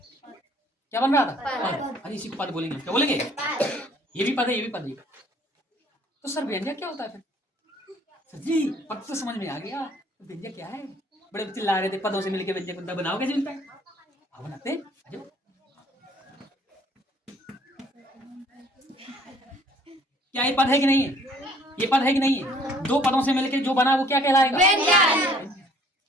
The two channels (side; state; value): both; normal; correlation 0.58